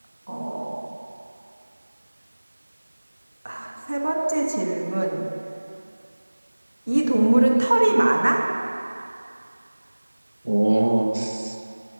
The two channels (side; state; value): both; inverted; correlation -1.00